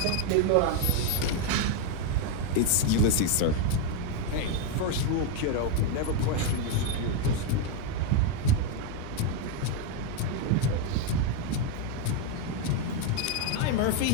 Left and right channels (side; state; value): both; different; correlation 0.01